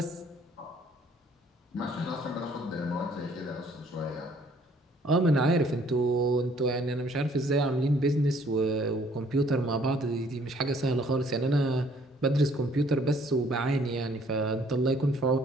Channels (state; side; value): normal; both; correlation 0.61